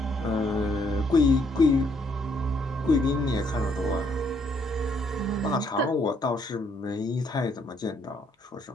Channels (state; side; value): normal; both; correlation 0.70